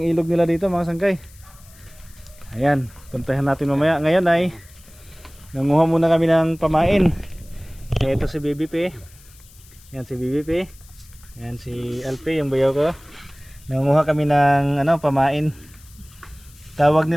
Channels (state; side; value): noise; left; hiss, 25 dB below the sound